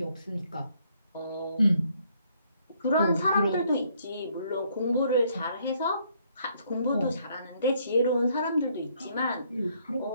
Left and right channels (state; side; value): inverted; both; correlation -0.68